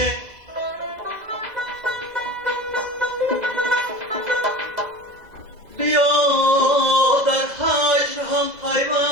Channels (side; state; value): left; late; 2.0 ms